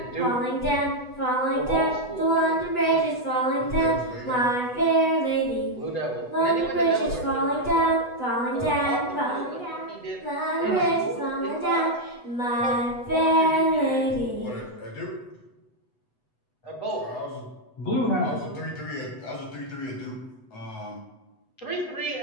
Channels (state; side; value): late; right; 8.1 ms